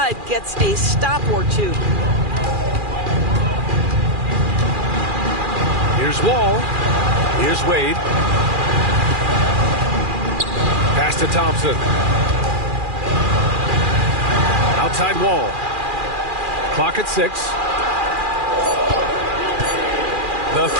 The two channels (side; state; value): left; late; 2.4 ms